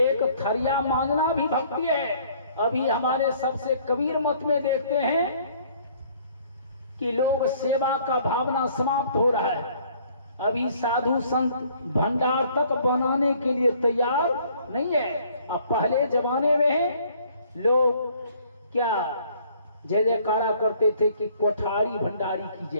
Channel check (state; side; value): inverted; both; correlation -0.59